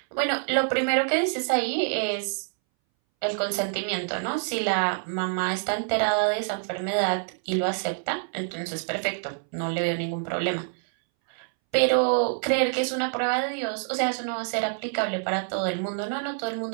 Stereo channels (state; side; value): silent; left; 60 dB below the other